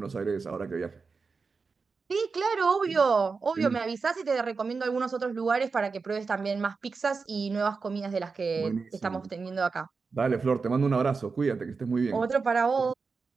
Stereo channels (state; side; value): quieter; left; 4.7 dB